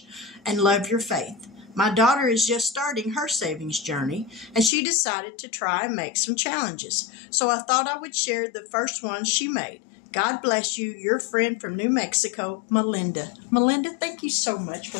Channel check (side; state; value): right; drops out; at 4.7 s